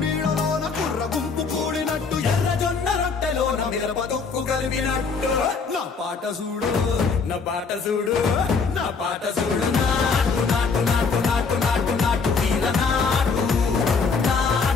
నీడలోన కుర్ర గుంపు కూడినట్టు ఎర్ర జొన్న రొట్టెలోన మిరప దొక్కు కలిపినట్టు నా పాట చూడు నా పాట చూడు నా పాట చూడు నాటు నాటు నాటు నాటు నాటు నాటు తీర నాటు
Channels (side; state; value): right; quieter; 5.0 dB